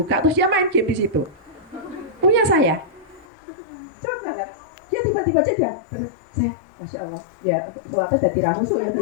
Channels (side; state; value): right; drops out; at 3.2 s